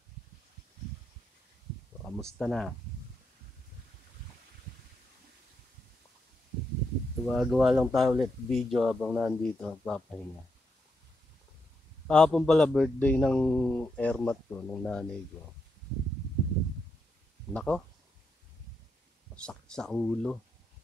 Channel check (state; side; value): normal; both; correlation 0.82